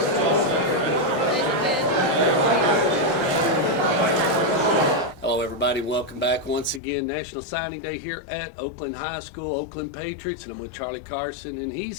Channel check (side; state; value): right; drops out; at 6.8 s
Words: Hello everybody, welcome back once again. National Signing Day here at Oakland High School, Oakland Patriots, and I'm with Charlie Carson, and